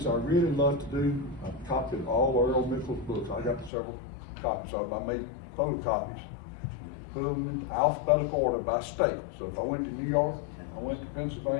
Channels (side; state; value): right; drops out; at 3.7 s